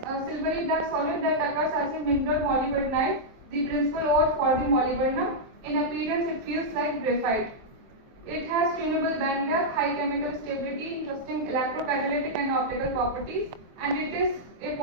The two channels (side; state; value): left; late; 23 ms